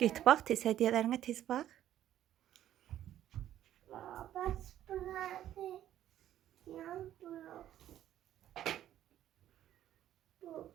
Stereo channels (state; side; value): quieter; left; 12.0 dB